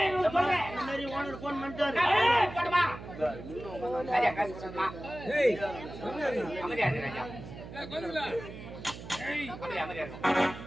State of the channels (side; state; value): right; noise; hum, 12 dB below the sound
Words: இந்த மாதிரி ஓனர் போன் பண்ணிட்டாரு